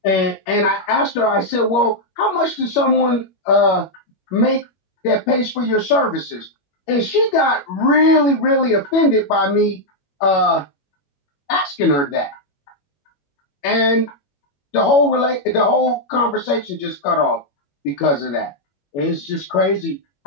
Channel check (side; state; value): right; late; 21 ms